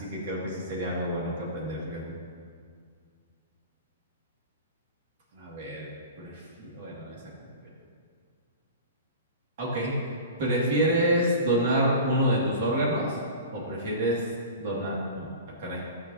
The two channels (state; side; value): inverted; both; correlation -0.35